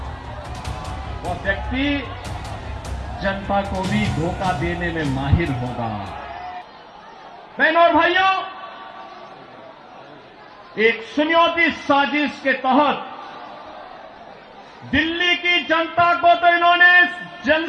वह व्यक्ति जनता को भी धोखा देने में माहिर होगा। बहनों और भाइयों, एक सुनियोजित साजिश के तहत दिल्ली की जनता को तो इन्होंने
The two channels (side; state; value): both; identical; correlation 1.00